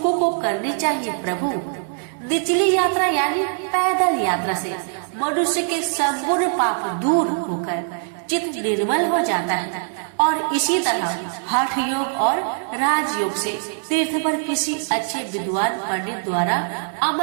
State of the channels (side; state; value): left; silent; digital silence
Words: को करनी चाहिए। प्रभु, निचली यात्रा यानी पैदल यात्रा से मनुष्य के संपूर्ण पाप दूर होकर चित्त निर्मल हो जाता है और इसी तरह हठ योग और राजयोग से तीर्थ पर किसी अच्छे विद्वान पंडित द्वारा